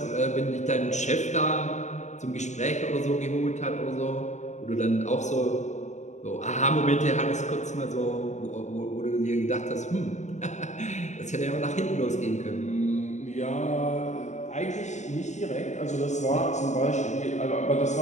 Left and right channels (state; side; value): late; right; 0.34 ms